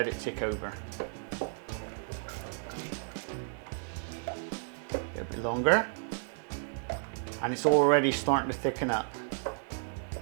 it tick over. A bit longer, and it's already starting to thicken up.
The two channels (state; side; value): silent; left; digital silence